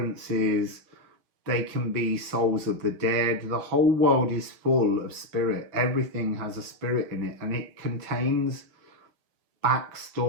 they can be souls of the dead. The whole world is full of spirit. Everything has a spirit in it, and it contains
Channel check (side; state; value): left; late; 5.6 ms